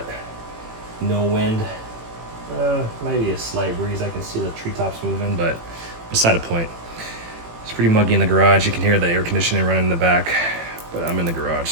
no wind. Maybe a slight breeze. I can see the treetops moving, but beside the point. It's pretty muggy in the garage. You can hear the air conditioning running in the back, but I'm in the garage,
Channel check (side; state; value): left; late; 18 ms